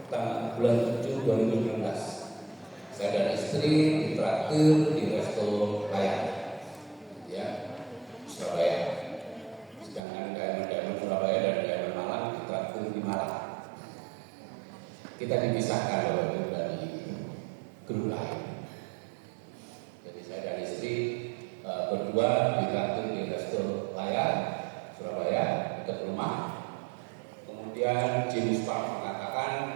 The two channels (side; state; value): left; drops out; at 10.0 s